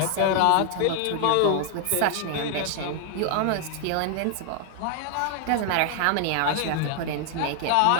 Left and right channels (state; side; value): different; both; correlation 0.00